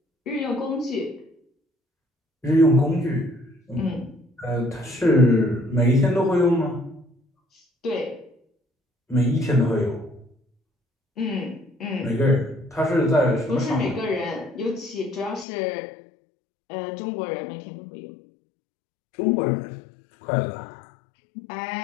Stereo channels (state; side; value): drops out; right; at 15.5 s